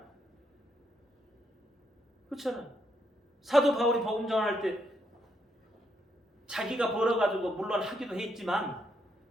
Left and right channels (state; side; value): normal; both; correlation 0.77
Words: 그렇잖아요. 사도 바울이 복음 전할 때 자기가 벌어가지고 물론 하기도 했지만